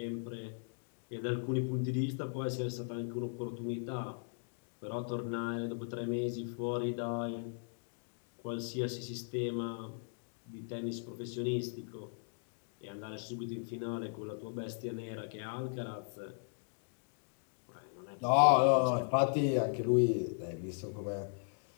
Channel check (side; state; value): right; silent; digital silence